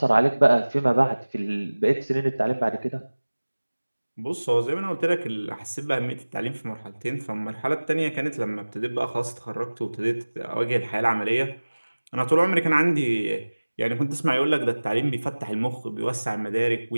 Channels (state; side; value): inverted; both; correlation -1.00